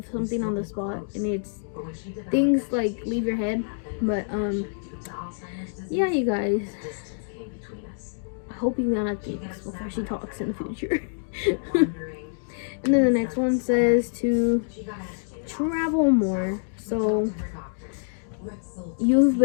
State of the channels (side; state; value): right; silent; digital silence